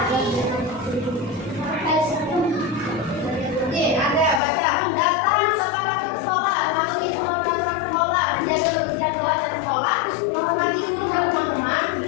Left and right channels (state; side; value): drops out; right; at 4.4 s